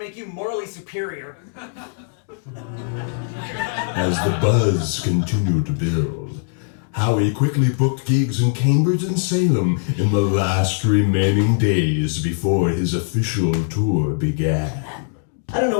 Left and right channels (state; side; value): silent; right; digital silence